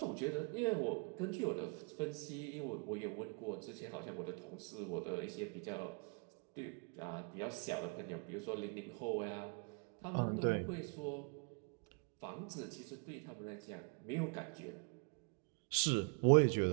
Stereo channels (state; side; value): quieter; left; 35.9 dB